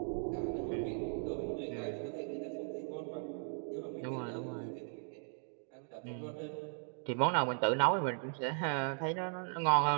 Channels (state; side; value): silent; left; 53 dB below the other